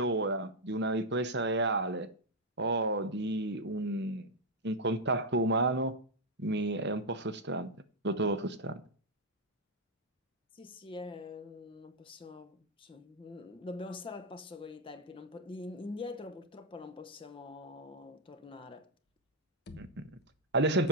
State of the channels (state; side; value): normal; both; correlation -0.02